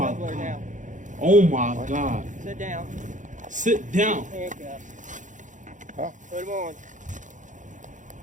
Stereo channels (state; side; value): late; left; 0.37 ms